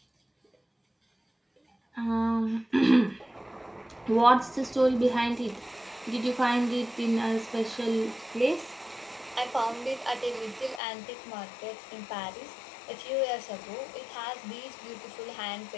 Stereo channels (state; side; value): drops out; right; at 10.8 s